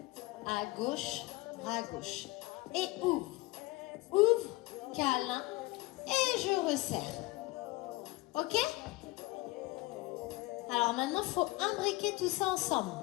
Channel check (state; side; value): quieter; right; 21.3 dB